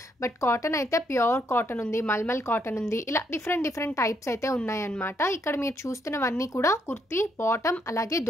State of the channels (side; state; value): both; normal; correlation 0.74